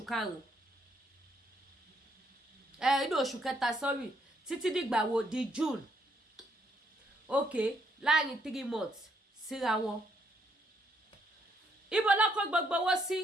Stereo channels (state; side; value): normal; both; correlation 0.72